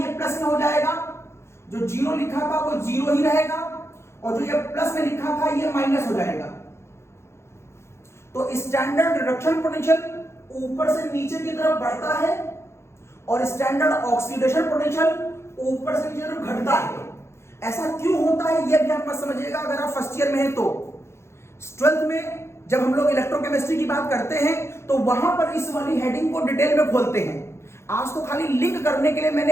प्लस में हो जाएगा, जो जीरो लिखा था वो जीरो ही रहेगा, और जो ये प्लस में लिखा था ये माइनस हो जाएगा। तो स्टैंडर्ड रिडक्शन पोटेंशियल ऊपर से नीचे की तरफ बढ़ता है और स्टैंडर्ड ऑक्सीडेशन पोटेंशियल ऊपर से नीचे की तरफ घटता है। ऐसा क्यों होता है ये भी आप मत समझिएगा अगर आप फर्स्ट ईयर में हैं तो। ट्वेल्थ में जब हम लोग इलेक्ट्रोकेमिस्ट्री की बात करते हैं तो वहां पर इस वाली हेडिंग को डिटेल में खोलते हैं। आज तो खाली लिंक करने के लिए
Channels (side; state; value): right; late; 0.13 ms